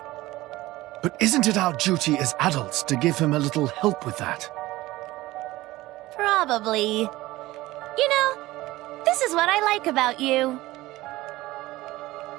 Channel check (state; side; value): quieter; left; 18.1 dB